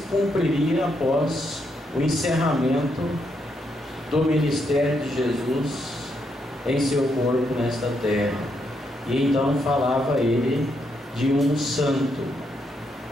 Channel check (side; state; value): both; normal; correlation 0.78